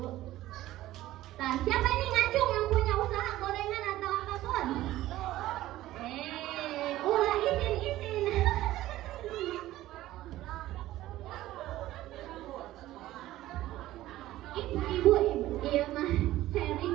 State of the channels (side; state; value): left; quieter; 15.4 dB